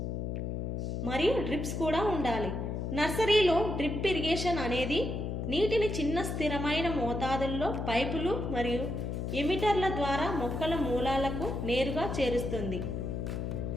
మరియు డ్రిప్స్ కూడా ఉండాలి. నర్సరీలో డ్రిప్ ఇరిగేషన్ అనేది నీటిని చిన్న స్థిరమైన మోతాదుల్లో పైపులు మరియు ఎమిటర్ల ద్వారా మొక్కల మూలాలకు నేరుగా చేరుస్తుంది.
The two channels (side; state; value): left; noise; hum, 3 dB below the sound